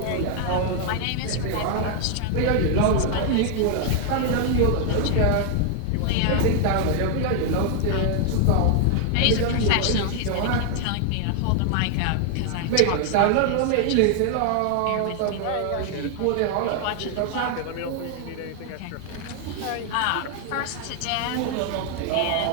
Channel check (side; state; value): both; different; correlation 0.00